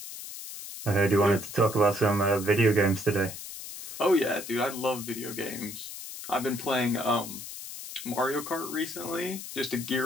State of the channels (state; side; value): noise; left; hiss, 10 dB below the sound